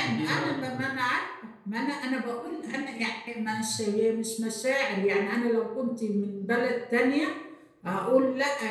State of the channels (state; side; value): identical; both; correlation 1.00